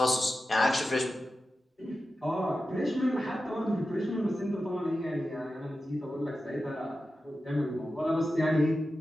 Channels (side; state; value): both; normal; correlation 0.92